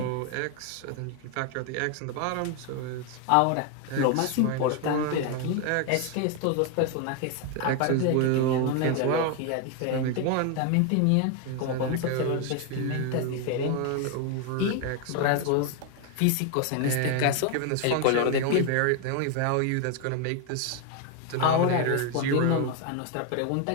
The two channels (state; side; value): different; both; correlation 0.01